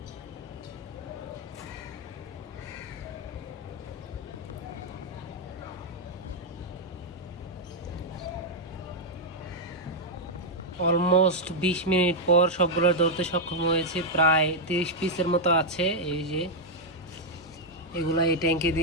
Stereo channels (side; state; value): both; normal; correlation -0.02